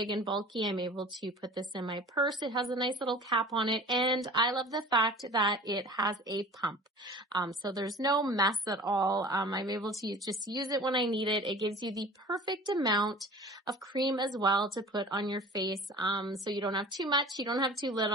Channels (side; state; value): both; normal; correlation 0.42